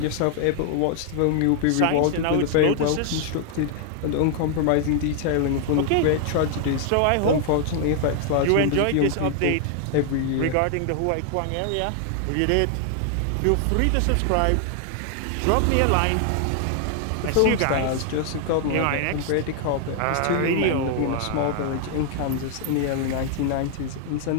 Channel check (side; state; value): both; different; correlation 0.00